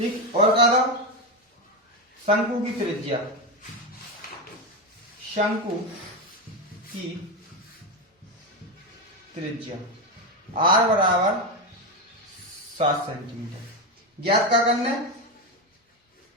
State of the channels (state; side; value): normal; both; correlation 0.12